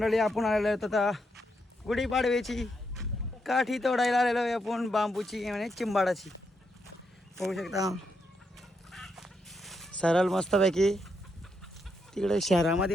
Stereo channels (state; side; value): normal; both; correlation 0.80